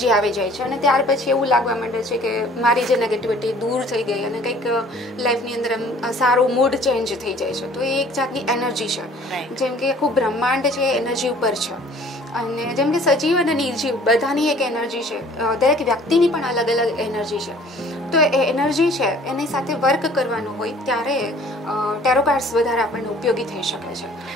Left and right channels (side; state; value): both; normal; correlation 0.53